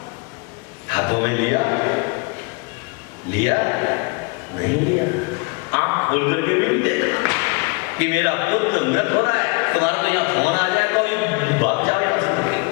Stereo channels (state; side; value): quieter; right; 31.2 dB